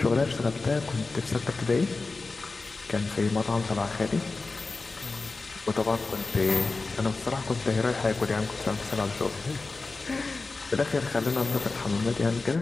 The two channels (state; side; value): quieter; right; 3.8 dB